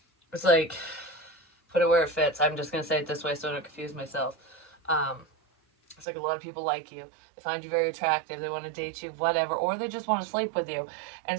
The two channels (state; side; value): drops out; left; at 6.1 s